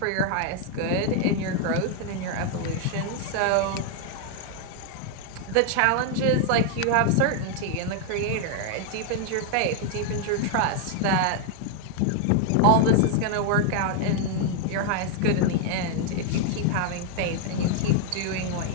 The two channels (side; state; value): both; different; correlation 0.00